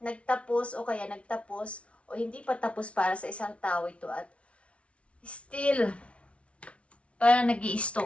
nagtapos o kaya nagtapos o hindi pa tapos para sa isang tao ito at still, parang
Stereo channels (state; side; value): late; right; 0.062 ms